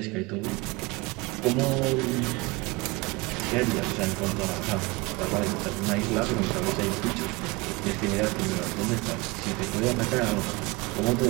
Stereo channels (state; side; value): quieter; left; 24.7 dB